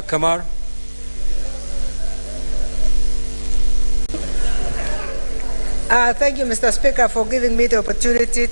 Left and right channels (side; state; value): both; inverted; correlation -1.00